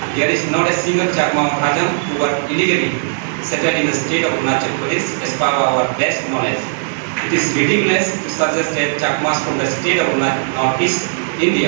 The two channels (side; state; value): left; silent; 67 dB below the other